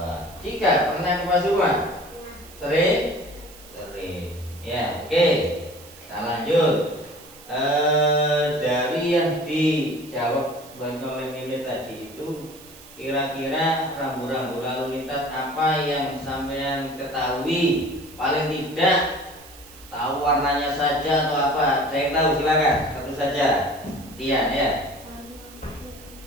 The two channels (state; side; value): noise; right; hiss, 20 dB below the sound